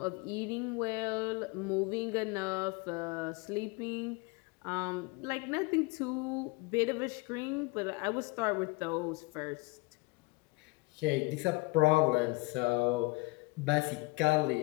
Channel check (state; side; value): quieter; right; 25.4 dB